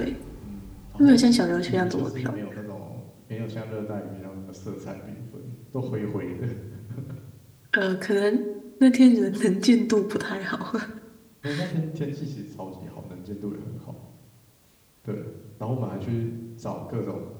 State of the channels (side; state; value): both; identical; correlation 1.00